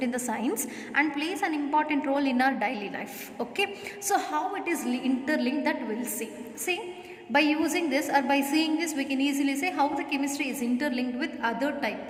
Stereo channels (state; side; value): identical; both; correlation 1.00